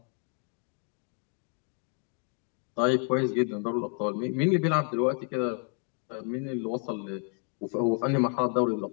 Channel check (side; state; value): right; quieter; 36.7 dB